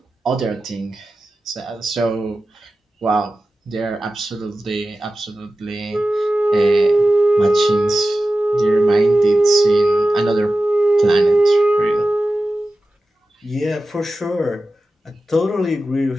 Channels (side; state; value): both; normal; correlation 0.94